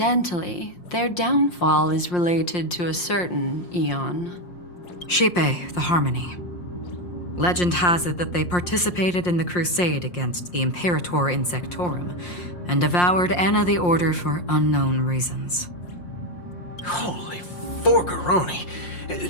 their downfall is related to a certain eon. Shipe, the Harmony. Legend has it that they participated in the crusade against the Imperator Insectorum and devoured Anna the Order for unknown reasons. Holy forgaroni.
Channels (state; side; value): late; right; 5.7 ms